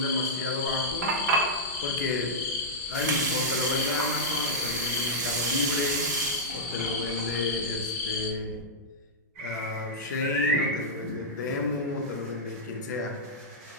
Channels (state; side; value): normal; both; correlation -0.09